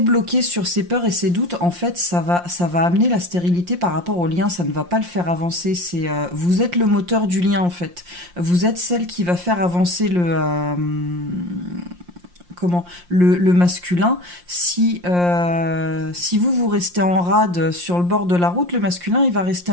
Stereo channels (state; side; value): late; left; 5.7 ms